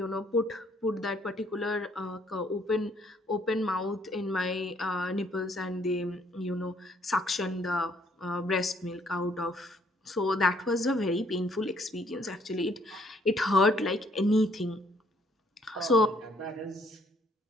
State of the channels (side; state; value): both; normal; correlation 0.66